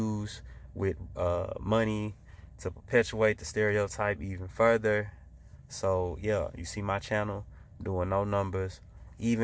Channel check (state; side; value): identical; both; correlation 1.00